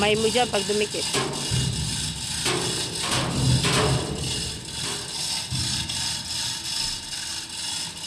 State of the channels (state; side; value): identical; both; correlation 1.00